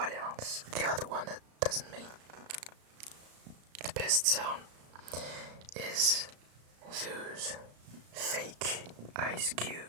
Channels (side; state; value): left; late; 35 ms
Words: else? The other one that doesn't make the best sound is those fake ice